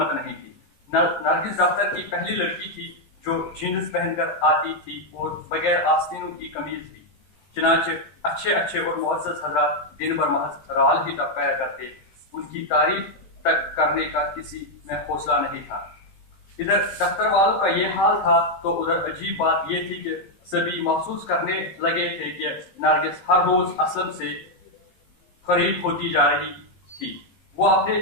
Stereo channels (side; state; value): right; late; 17 ms